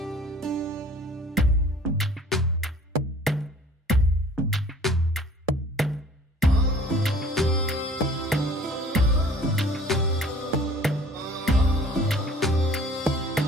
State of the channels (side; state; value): both; normal; correlation 0.50